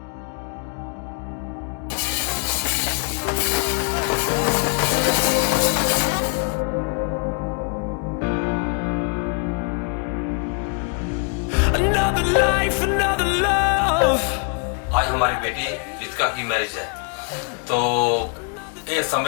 Another life, another love. आज हमारी बेटी रितिका की मैरिज है, तो ये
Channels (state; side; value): quieter; right; 39.0 dB